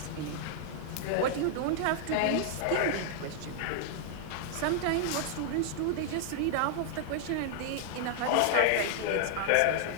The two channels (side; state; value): both; different; correlation -0.01